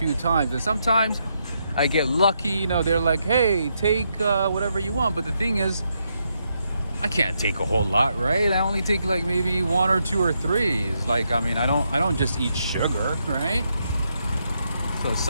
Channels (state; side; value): inverted; both; correlation -0.80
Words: times. And sometimes I get lucky. You know, they're like, "Hey, take whatever you want." But the thing is, I can't take a whole lot, right? I only take like maybe 1 or 2 or 3. Like, I mean, I don't just eat sugar, right? So